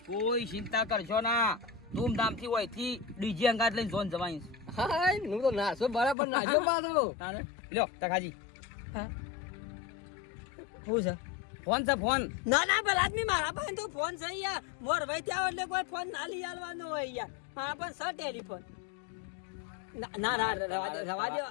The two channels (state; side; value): drops out; right; at 6.2 s